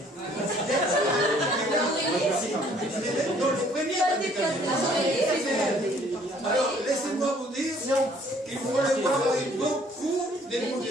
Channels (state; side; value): normal; both; correlation 0.60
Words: Dans le premier bal des cadets. Alors, laissez-moi vous dire qu'il faut les voir avec beaucoup